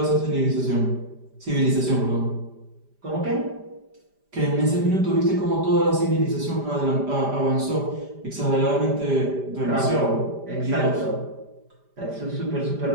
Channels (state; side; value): late; left; 5.0 ms